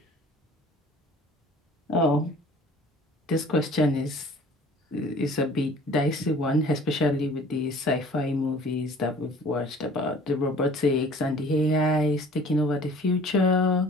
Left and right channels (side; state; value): both; normal; correlation 0.49